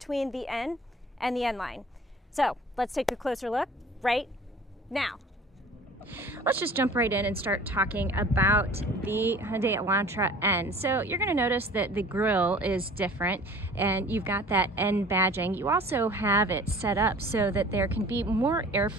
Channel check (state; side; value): normal; both; correlation 0.46